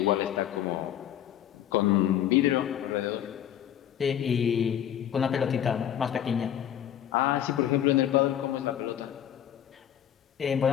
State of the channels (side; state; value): right; quieter; 10.5 dB